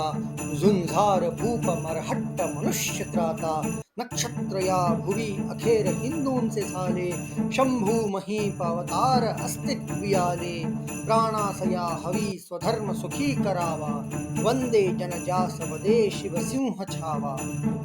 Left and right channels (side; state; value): both; identical; correlation 1.00